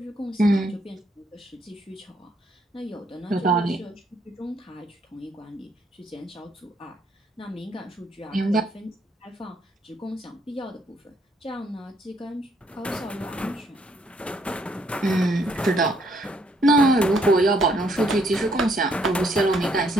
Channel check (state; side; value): normal; both; correlation 0.69